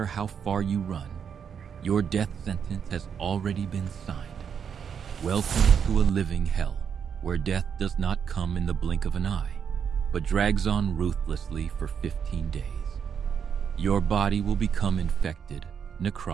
how far you run, your death sentence has already been signed. Welcome to a living hell, where death does not come in the blink of an eye, but drags on ruthlessly for 15 days. Your body will become infected,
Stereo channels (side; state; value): left; quieter; 7.3 dB